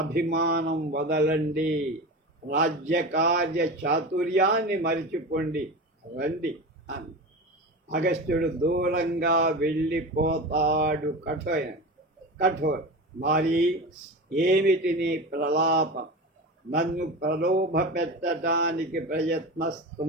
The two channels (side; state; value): both; normal; correlation 0.27